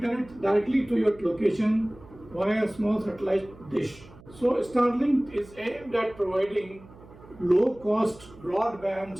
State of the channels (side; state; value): right; noise; hum, 22 dB below the sound